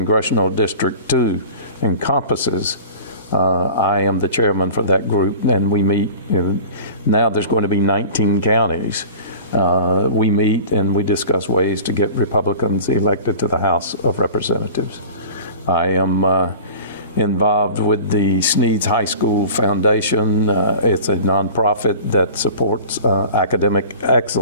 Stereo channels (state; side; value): inverted; both; correlation -0.40